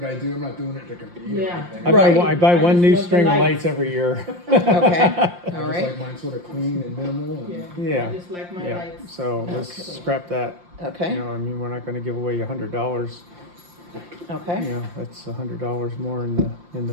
I do. I'm not doing it to compete or Yeah. anything. Right. I buy I one just new love the string of lights. lights every year. okay, I all just right, like mine sort of clean and minimal. And Yeah. I just like my Yeah, lights. so let's Okay. scrap that. okay, I mean, we're not gonna give away $100. okay, That's $100 more in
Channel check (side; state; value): left; late; 5.7 ms